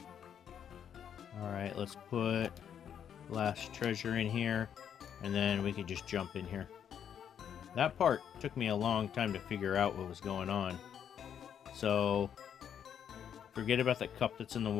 Alright, let's put last treasure in here, and then we can just jump in here. That part took me a long time to figure out what was going on. So, forget about that cup that's in the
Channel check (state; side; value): quieter; right; 8.7 dB